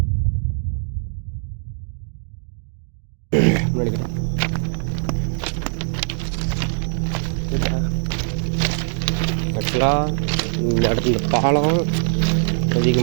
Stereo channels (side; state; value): left; silent; digital silence